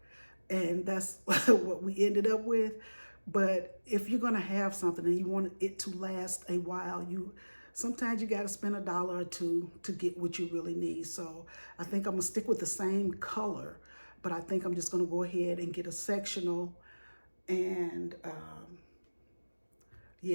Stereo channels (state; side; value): inverted; both; correlation -1.00